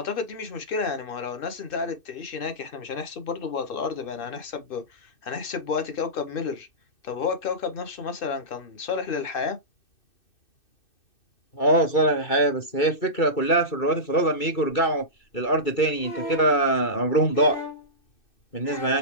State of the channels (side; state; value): right; late; 2.6 ms